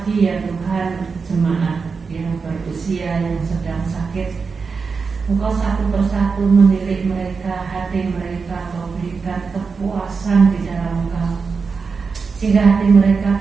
ya Tuhan, jemaat yang berusia yang sedang sakit. Engkau satu persatu menilik mereka, hati mereka, Kau berikan kepuasan di dalam Engkau, sehingga hati mereka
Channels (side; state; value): left; quieter; 5.0 dB